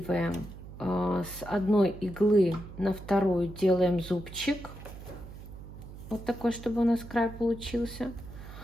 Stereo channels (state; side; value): noise; right; hum, 14 dB below the sound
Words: с одной иглы на вторую, делаем зубчик, вот такой, чтобы у нас край получился.